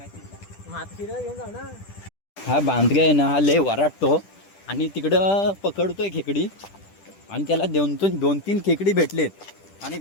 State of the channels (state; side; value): late; right; 10 ms